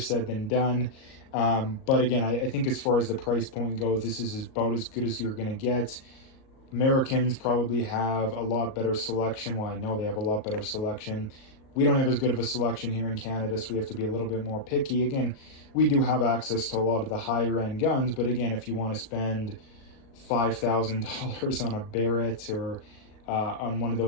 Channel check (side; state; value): right; late; 38 ms